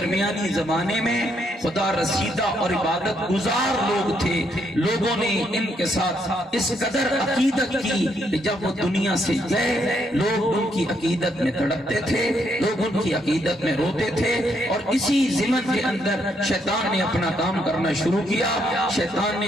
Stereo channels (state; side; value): normal; both; correlation 0.74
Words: زمانے میں خدا رسیدہ اور عبادت گزار لوگ تھے۔ لوگوں نے ان کے ساتھ اس قدر عقیدت کی کہ جب وہ دنیا سے گئے لوگ ان کی عقیدت میں تڑپتے تھے، لوگ ان کی عقیدت میں روتے تھے، اور اسی ضمن کے اندر شیطان نے اپنا کام کرنا شروع کیا۔ شیطان نے